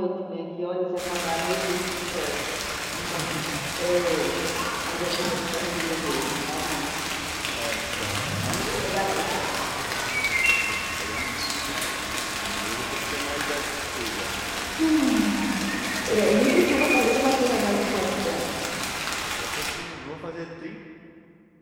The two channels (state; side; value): identical; both; correlation 1.00